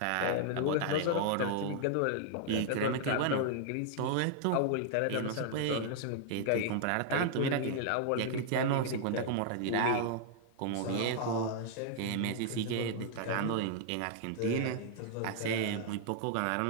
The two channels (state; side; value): different; both; correlation -0.01